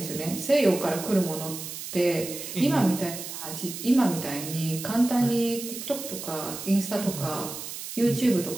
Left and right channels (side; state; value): right; noise; hiss, 9 dB below the sound